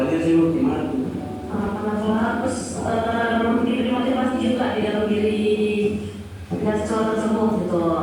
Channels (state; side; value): identical; both; correlation 1.00